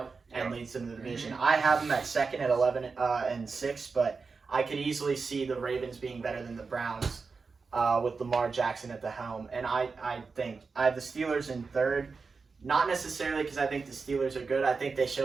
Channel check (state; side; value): quieter; left; 4.7 dB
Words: and leads them to the division. I have them at second at 11-6, but I could easily see the Ravens being better than the Browns with Lamar Jackson at the helm. And I think I have the Steelers in third, not necessarily because I think the Steelers are good. I think they